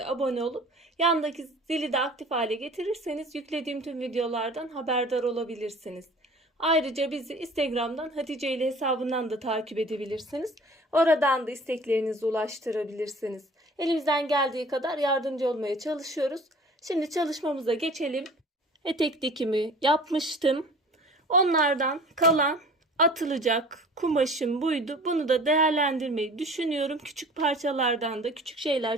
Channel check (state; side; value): normal; both; correlation 0.46